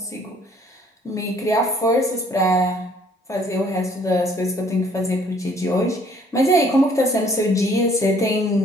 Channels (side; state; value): both; normal; correlation 0.60